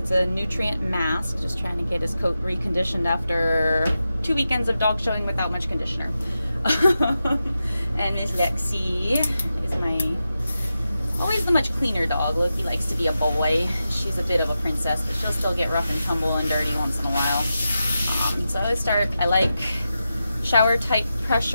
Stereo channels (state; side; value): inverted; both; correlation -0.90